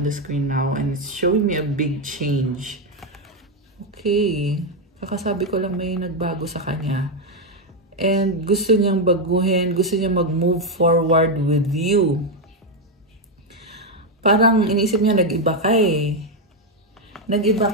the screen now. And it's showing me a big change. Okay. Kakasabi ko lang may nagbago sa kanya. And gusto niyang baguhin, gusto niyang mag-move forward with you. Parang iniisip niya, nag-iba ka eh. Nag-iba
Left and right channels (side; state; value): both; normal; correlation 0.04